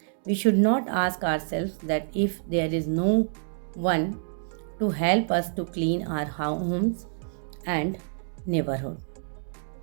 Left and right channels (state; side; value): silent; left; digital silence